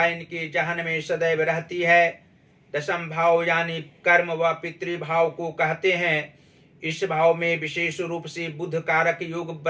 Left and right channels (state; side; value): identical; both; correlation 1.00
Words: इनके जहन में सदैव रहती है। दशम भाव यानी कर्म व पितृभाव को कहते हैं। इस भाव में विशेष रूप से बुध कारक योग